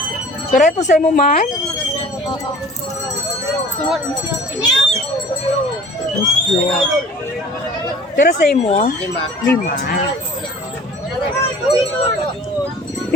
Pero ito sa mo man? Pero sa mo? 5.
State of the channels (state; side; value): normal; both; correlation 0.46